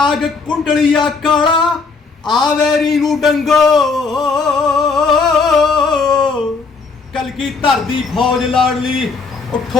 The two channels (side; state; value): right; quieter; 4.5 dB